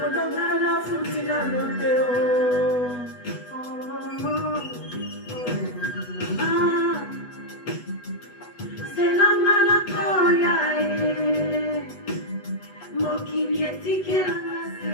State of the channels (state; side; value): late; right; 8.1 ms